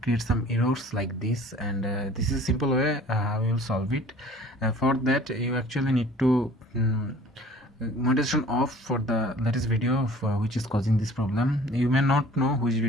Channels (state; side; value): normal; both; correlation 0.49